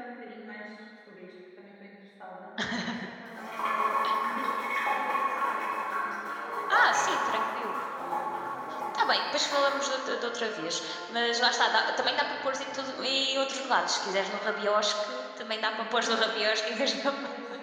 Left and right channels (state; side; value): identical; both; correlation 1.00